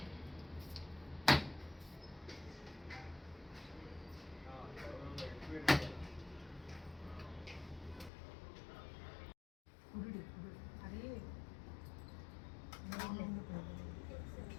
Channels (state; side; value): drops out; right; at 8.1 s